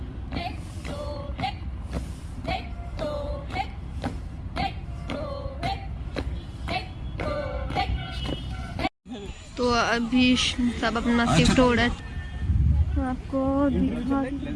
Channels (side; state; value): both; identical; correlation 1.00